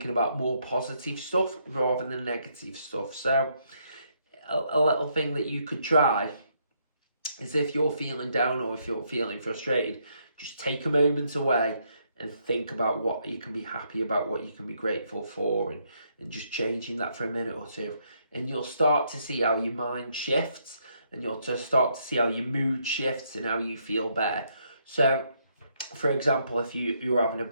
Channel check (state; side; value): inverted; both; correlation -0.74